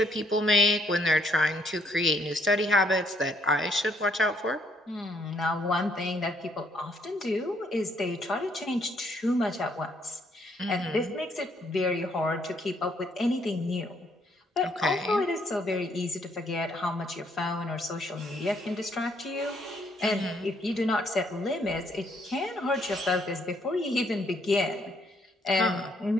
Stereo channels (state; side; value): normal; both; correlation 0.68